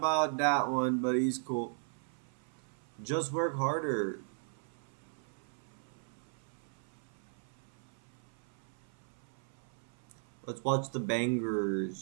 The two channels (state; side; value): silent; left; 53 dB below the other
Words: that one, but he's cool. Just work harder. Let's watch the